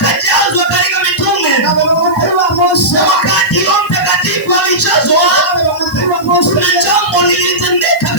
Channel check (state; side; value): noise; right; hiss, 22 dB below the sound